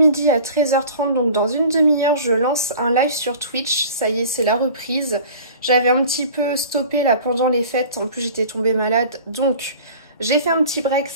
à 13h30, donc dans une demi-heure, je lance un live sur Twitch. Ça y est, c'est la reprise. J'avais un petit peu stoppé là pendant les fêtes, en plus j'étais tombée malade, donc j'ai fait un petit break,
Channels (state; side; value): inverted; both; correlation -0.43